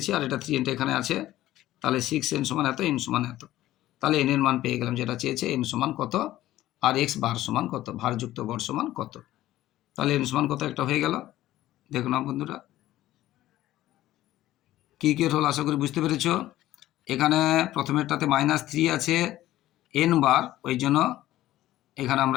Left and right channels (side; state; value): right; quieter; 14.7 dB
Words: আর এটা 3nটা এখানে আছে, তাহলে 6n সমান এত, n সমান এত। তাহলে n এর মান পেয়ে গেলাম, যেটা চেয়েছে n সমান কত, আর x বার সমান কত, ভারযুক্ত গড় সমান কত। তাহলে n সমান কত একটা হয়ে গেল। দেখো না বন্ধুরা, কি হল আশা করি বুঝতে পেরেছ। এখানে প্রথমেরটাতে -3 আছে n বার, ওই জন্য এখানে